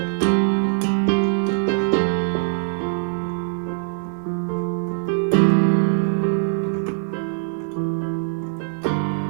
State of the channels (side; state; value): left; silent; digital silence